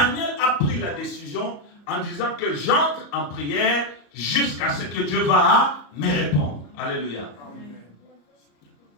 a pris la décision en disant que j'entre en prière jusqu'à ce que Dieu va me répondre. Alléluia.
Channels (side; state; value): right; late; 34 ms